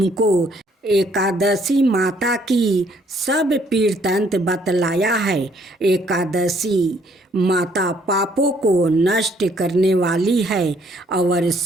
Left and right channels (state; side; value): normal; both; correlation 0.65